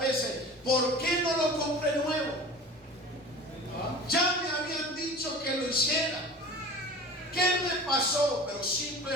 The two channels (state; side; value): normal; both; correlation 0.37